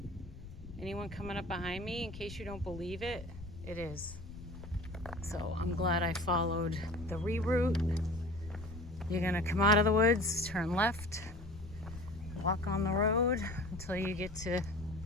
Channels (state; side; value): noise; left; rumble, 14 dB below the sound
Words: Anyone coming up behind me, in case you don't believe it, it is. So I'm glad I followed the reroute. You're gonna come out of the woods, turn left, walk on the road until you get to